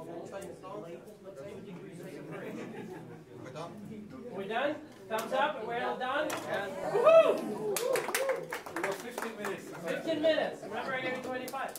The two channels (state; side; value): identical; both; correlation 1.00